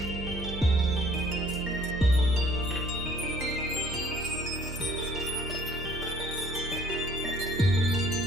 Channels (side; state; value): both; normal; correlation 0.58